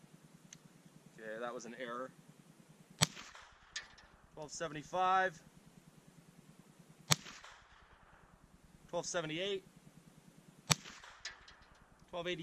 Okay, that was an error. 1275, 1278,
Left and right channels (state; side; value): identical; both; correlation 1.00